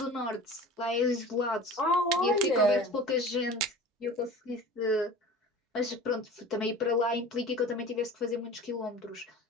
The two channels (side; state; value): both; normal; correlation 0.39